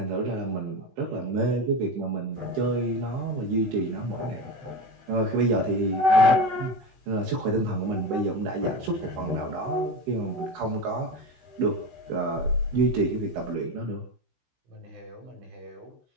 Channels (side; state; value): left; late; 16 ms